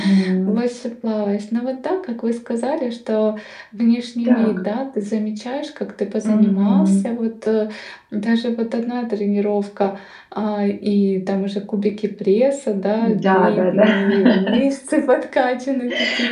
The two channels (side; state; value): both; identical; correlation 1.00